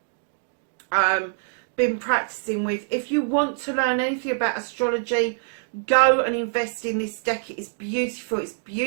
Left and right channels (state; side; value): silent; left; digital silence